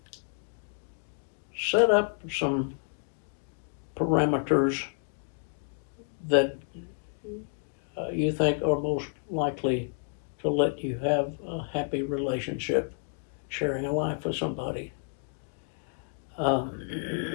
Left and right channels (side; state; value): right; silent; 58 dB below the other